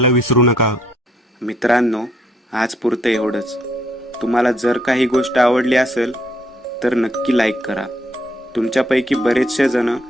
विसरू नका. मित्रांनो, आज पुरतं एवढंच. तुम्हाला जर काही गोष्ट आवडली असेल तर नक्की लाईक करा. तुमच्यापैकी बरेचसे जण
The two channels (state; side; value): normal; both; correlation 0.70